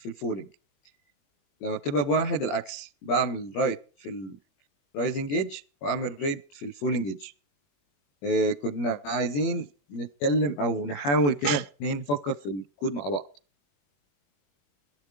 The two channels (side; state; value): right; late; 21 ms